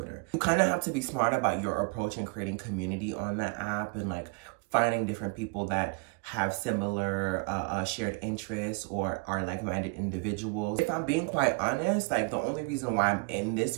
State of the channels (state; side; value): quieter; left; 31.5 dB